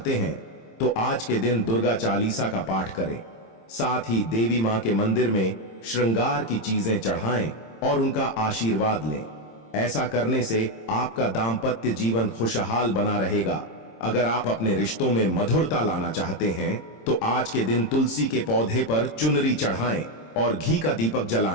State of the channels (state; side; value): late; right; 26 ms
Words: हैं तो आज के दिन दुर्गा चालीसा का पाठ करें। साथ ही देवी मां के मंदिर में श्रृंगार की चीजें चढ़ाएं और उनका आशीर्वाद लें। ऐसा करने से आपका दाम्पत्य जीवन खुशहाल बना रहेगा। अगर आप अपने रिश्तों में मधुरता लाना चाहते हैं तो आज के दिन तुलसी के पौधे पर चुनरी चढ़ाएं और घी का दीपक